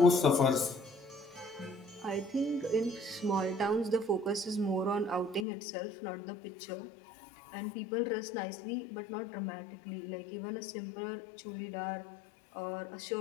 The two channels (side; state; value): right; drops out; at 5.5 s